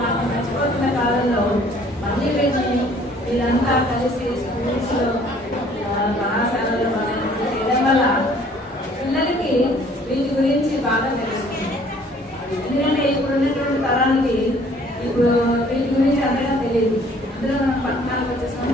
మనం మర్చిపోతున్న కాలంలో మళ్ళీ వీళ్ళంతా కలిసి స్కూల్స్లో కళాశాలలో చేయడం వల్ల పిల్లలకి వీటి గురించి బాగా తెలుస్తుంది. ఎందుకంటే ఇప్పుడు ఉన్నటువంటి తరానికి ఇప్పుడు వీటి గురించి అంతగా తెలియదు. అందులో మనం పట్టణాలకు వచ్చేసాం,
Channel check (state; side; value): normal; both; correlation 0.57